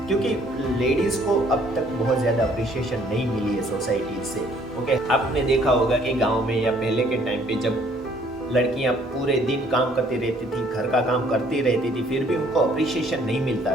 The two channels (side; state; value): both; normal; correlation 0.61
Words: क्योंकि लेडीज़ को अब तक बहुत ज़्यादा अप्रिशिएशन नहीं मिली है सोसाइटी से। ओके, आपने देखा होगा कि गांव में या पहले के टाइम पे जब लड़कियां पूरे दिन काम करती रहती थी, घर का काम करती रहती थी, फिर भी उनको अप्रिशिएशन नहीं